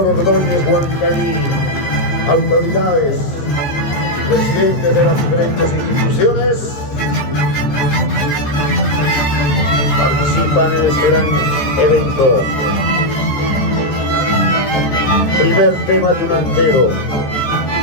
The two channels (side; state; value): right; late; 14 ms